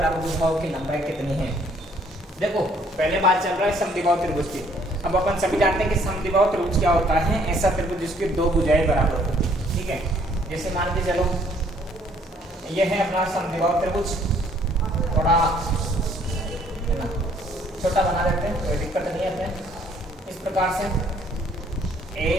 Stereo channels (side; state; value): both; normal; correlation 0.63